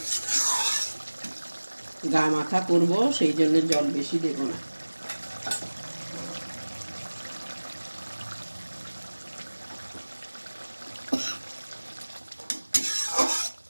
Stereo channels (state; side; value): inverted; both; correlation -1.00